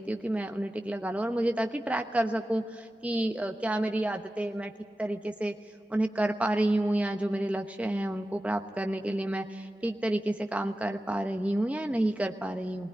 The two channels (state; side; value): normal; both; correlation 0.93